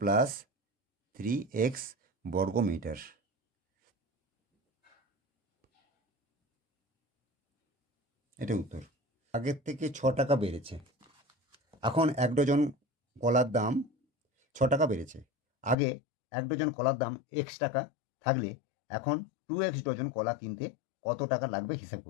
plus 3x বর্গ মিটার। এটা উত্তর। আগের থেকে 6 টাকা বেড়েছে। এখন 1 ডজন কলার দাম 6 টাকা বেড়েছে। আগে 1 ডজন কলার দাম x টাকা থাকলে এখন 2x ডজন কলা কিনতে কত টাকা লাগবে হিসাব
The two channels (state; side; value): drops out; right; at 15.8 s